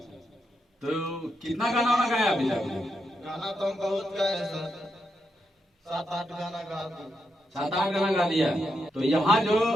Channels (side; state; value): both; normal; correlation 0.83